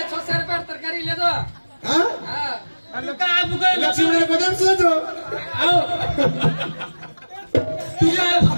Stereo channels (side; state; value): both; inverted; correlation -1.00